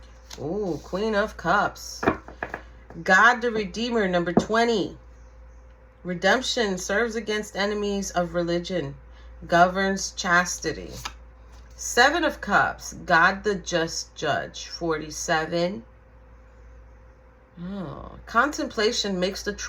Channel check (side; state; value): both; identical; correlation 1.00